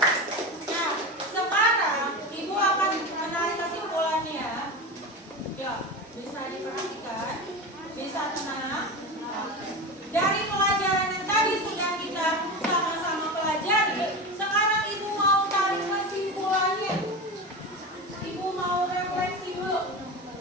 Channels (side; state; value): both; normal; correlation 0.24